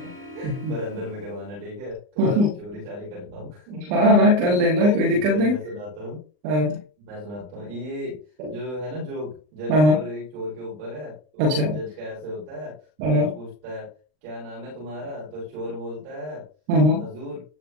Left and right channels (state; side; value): late; left; 39 ms